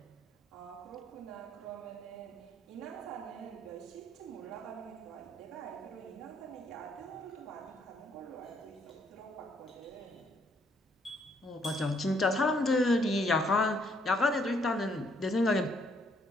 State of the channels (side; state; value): both; normal; correlation 0.69